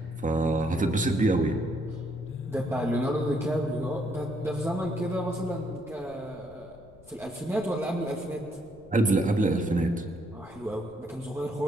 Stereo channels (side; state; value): left; noise; rumble, 23 dB below the sound